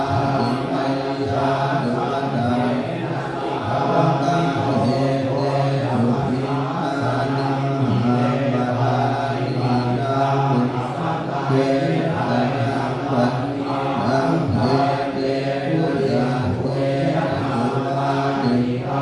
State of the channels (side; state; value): both; identical; correlation 1.00